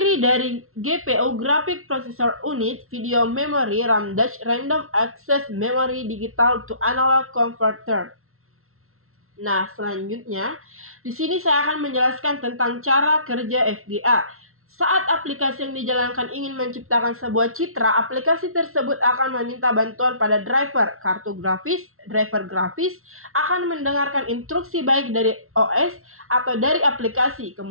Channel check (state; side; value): late; left; 0.62 ms